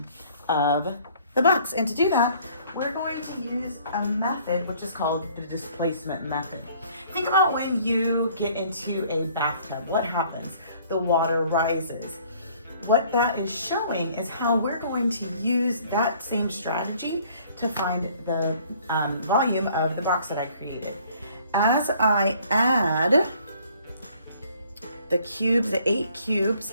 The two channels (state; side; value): inverted; both; correlation -0.57